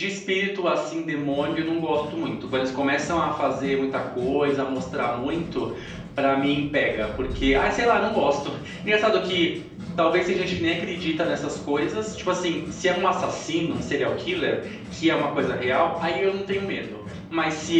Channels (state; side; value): identical; both; correlation 1.00